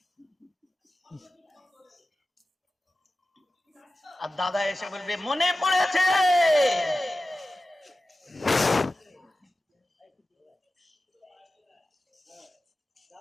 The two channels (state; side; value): normal; both; correlation 0.94